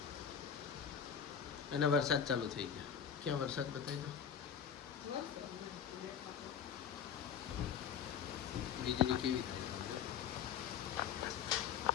અને વરસાદ ચાલુ થઈ ગયો ક્યાં વરસાદ બતાવી દો વીજળી કેવી થાય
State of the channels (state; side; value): quieter; right; 7.9 dB